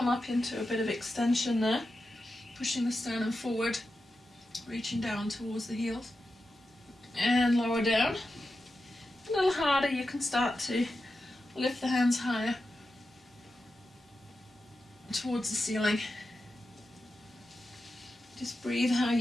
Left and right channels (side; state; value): both; normal; correlation 0.90